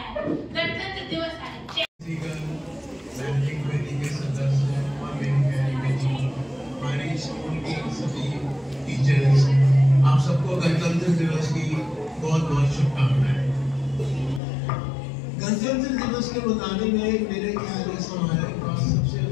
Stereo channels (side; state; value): right; drops out; at 14.4 s